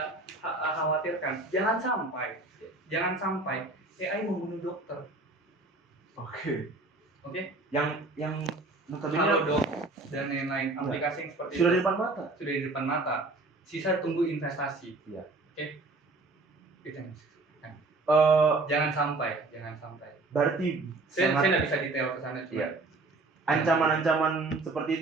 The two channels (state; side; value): quieter; left; 3.2 dB